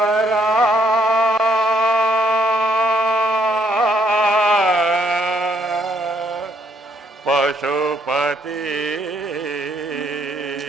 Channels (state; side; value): normal; both; correlation 0.70